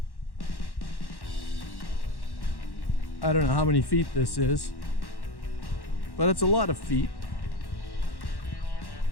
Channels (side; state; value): right; late; 1.1 ms